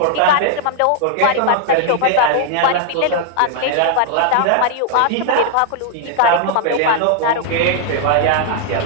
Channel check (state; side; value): different; both; correlation 0.00